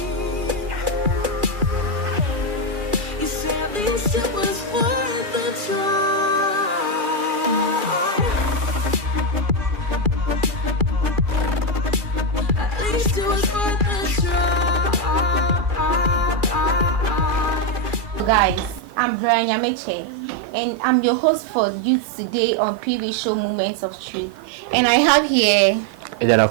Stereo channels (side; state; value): left; late; 2.4 ms